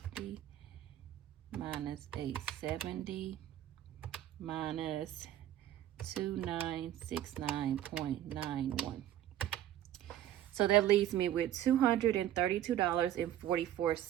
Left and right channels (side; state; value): left; quieter; 12.1 dB